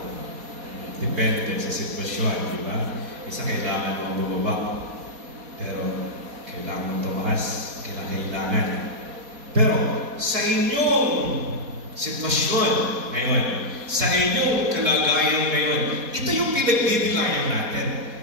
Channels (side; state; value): left; late; 4.2 ms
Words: Depende sa sitwasyon, di ba? Isa kailangan mong bumaba. Pero kailangan tumaas, kailangan. Pero sa inyong sitwasyon ngayon, sa inyong kalagayan ngayon, ito yung pinagdidilayan natin.